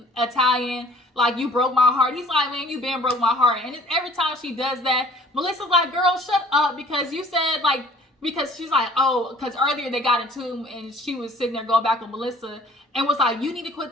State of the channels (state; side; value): normal; both; correlation 0.52